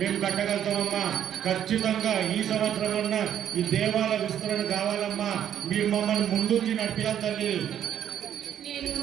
మేము కట్టగలుగుతామమ్మా. ఖచ్చితంగా ఈ సంవత్సరం అన్నా ఈ దేవాలయ విస్తరణ కావాలమ్మా. మీరు మమ్మల్ని ముందుంచి నడిపియాలి తల్లి.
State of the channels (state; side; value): quieter; left; 10.0 dB